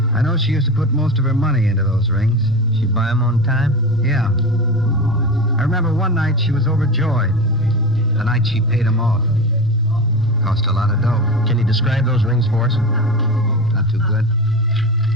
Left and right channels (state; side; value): normal; both; correlation 0.25